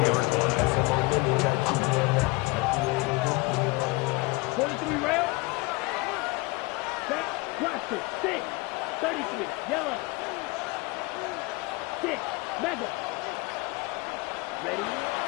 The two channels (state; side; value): quieter; right; 24.2 dB